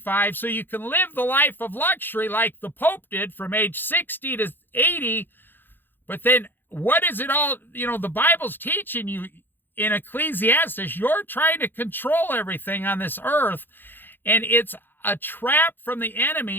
so you can live the life of luxury like the Pope did from age 60 to 80. But then what is it all, the Bible's teaching you in Ecclesiastes, you're trying to control everything on this earth, and it's a trap from the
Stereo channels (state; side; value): late; right; 0.097 ms